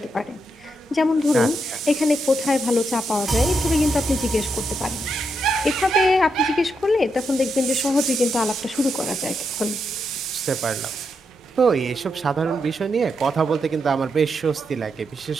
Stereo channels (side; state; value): both; normal; correlation 0.82